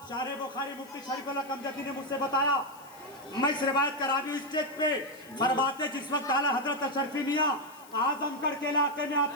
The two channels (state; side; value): noise; left; hiss, 23 dB below the sound